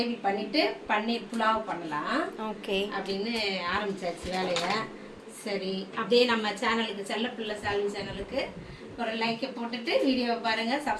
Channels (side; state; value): both; identical; correlation 1.00